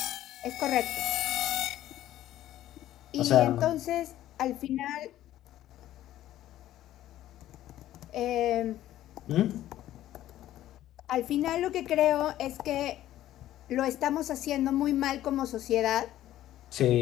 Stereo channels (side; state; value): right; quieter; 13.4 dB